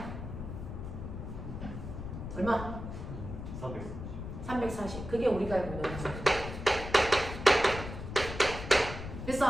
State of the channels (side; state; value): left; noise; rumble, 8 dB below the sound